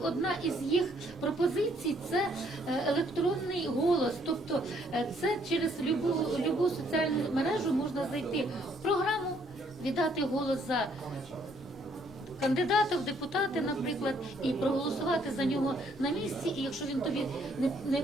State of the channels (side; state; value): both; normal; correlation 0.67